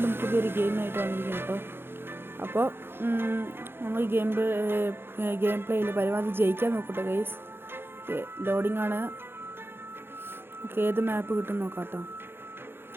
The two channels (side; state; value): left; late; 0.11 ms